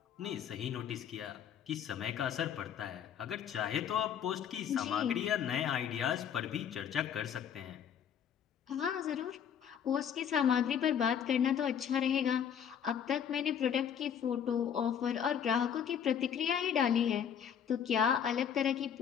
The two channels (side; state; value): right; quieter; 8.4 dB